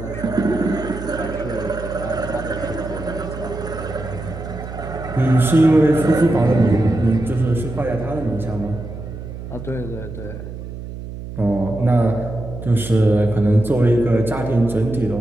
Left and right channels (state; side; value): noise; right; hum, 10 dB below the sound